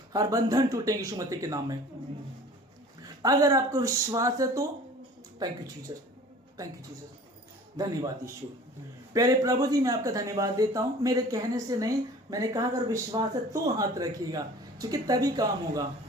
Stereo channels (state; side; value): normal; both; correlation 0.45